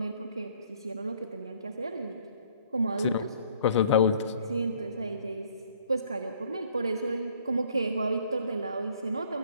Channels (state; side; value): inverted; both; correlation -0.61